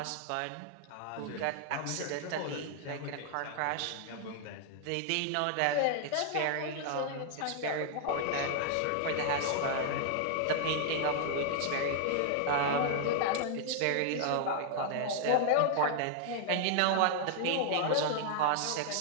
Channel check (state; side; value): different; both; correlation 0.00